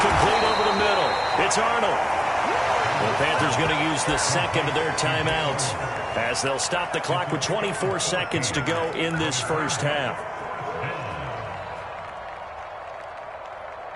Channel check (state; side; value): identical; both; correlation 1.00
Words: complete over the middle. It's Arnold. The Panthers going to use the second of their timeouts, as they'll stop the clock with 24 seconds to go in this first half.